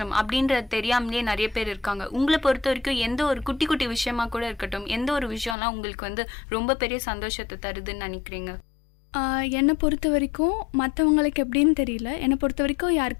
அப்படின்றது தெரியாமலே நிறைய பேர் இருக்காங்க. உங்களை பொறுத்த வரைக்கும் எந்த ஒரு குட்டி குட்டி விஷயமா கூட இருக்கட்டும், எந்த ஒரு விஷயம்லாம் உங்களுக்கு ரொம்ப பெரிய சந்தோஷத்தை தருதுன்னு நினைக்கிறீங்க? என்னை பொறுத்த வரைக்கும் மற்றவங்களுக்கு எப்படின்னு தெரியல, என்னை பொறுத்த வரைக்கும்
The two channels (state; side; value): drops out; right; at 5.6 s